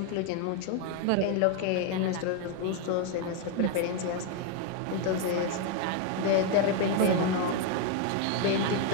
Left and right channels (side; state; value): both; different; correlation 0.01